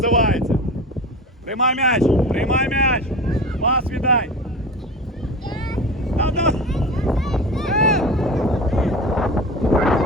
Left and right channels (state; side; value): normal; both; correlation 0.31